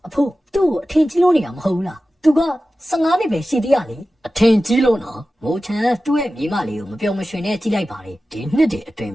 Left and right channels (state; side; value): normal; both; correlation 0.95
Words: အဖိုးသူ့ကိုအထင်ကြီးလို့နေတာမဟုတ်ဘူးလားသူက15နှစ်ပဲရှိသေးရလေအထင်ကြီးလို့နော်မိုးချန်သူ့ရဲ့မိမလေးကိုမပြောမရွှင်နဲ့ကြည့်လိုက်ပါလေဒီနှစ်တည်းအတွင်း